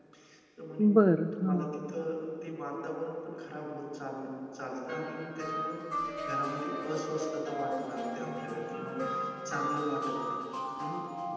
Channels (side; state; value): both; identical; correlation 1.00